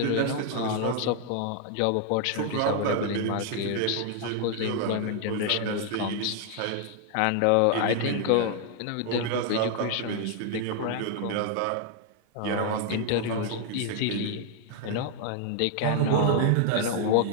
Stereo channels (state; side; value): different; both; correlation 0.00